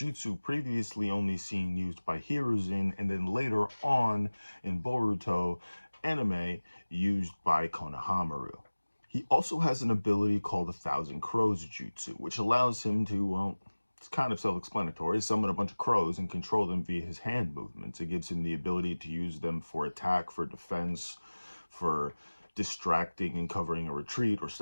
previously only seen used by Hiruzen, and then later on in Boruto anime used by Konohamaru. He also has an ability called 1,000 Crows Jutsu, which allows him to, well, it's kind of self-explanatory, summon a bunch of crows and control them via his hand movements. It gives him the ability to use them for attack, for defense, for distracting and covering a retreat or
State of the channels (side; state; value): both; inverted; correlation -1.00